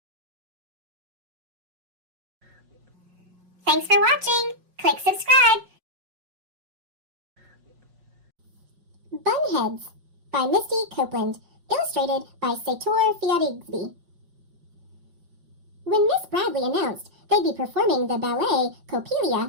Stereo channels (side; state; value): left; late; 5.5 ms